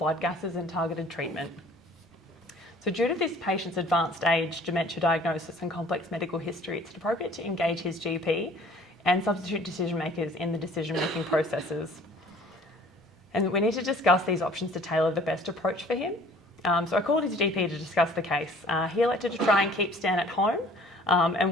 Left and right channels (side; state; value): both; normal; correlation 0.52